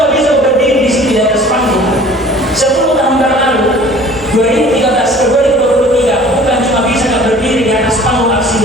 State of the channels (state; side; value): normal; both; correlation 0.48